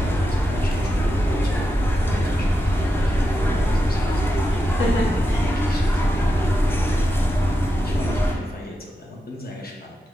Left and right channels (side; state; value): both; normal; correlation 0.88